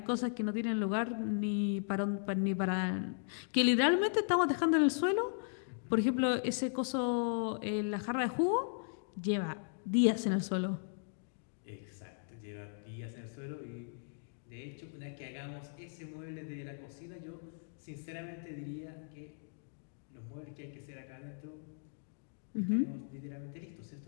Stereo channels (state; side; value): silent; right; digital silence